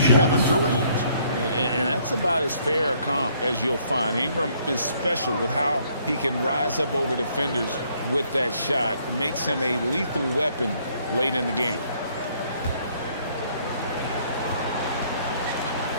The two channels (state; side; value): inverted; both; correlation -0.66